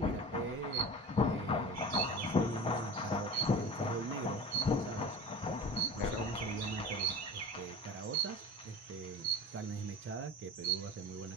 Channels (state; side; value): normal; both; correlation 0.35